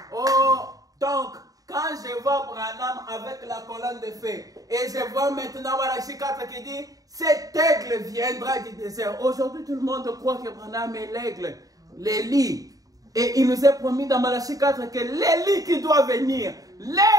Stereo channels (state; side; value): late; left; 0.17 ms